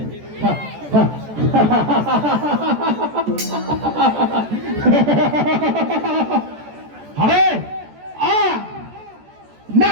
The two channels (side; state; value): left; late; 14 ms